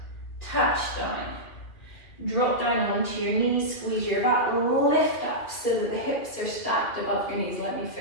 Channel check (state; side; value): late; right; 2.7 ms